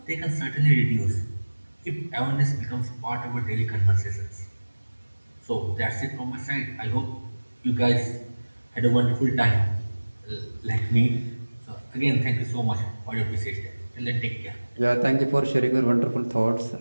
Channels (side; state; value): both; inverted; correlation -1.00